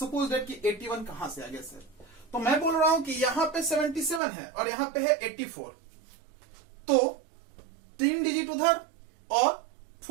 दैट कि 81 कहां से आ गया सर? तो मैं बोल रहा हूं कि यहां पे 77 है और यहां पे है 84, तो 3 डिजिट उधर और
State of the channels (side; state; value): left; drops out; at 4.2 s